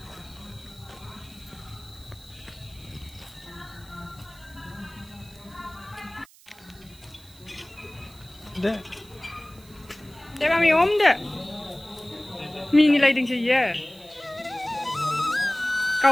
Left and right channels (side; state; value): right; noise; hiss, 24 dB below the sound